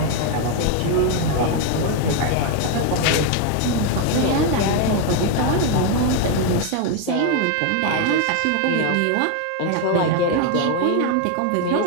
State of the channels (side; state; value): both; different; correlation 0.01